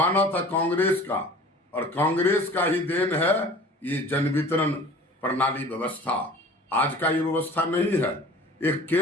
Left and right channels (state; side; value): normal; both; correlation 0.44